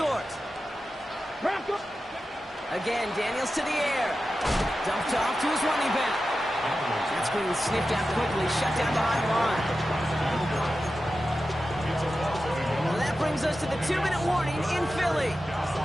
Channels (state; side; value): normal; both; correlation 0.92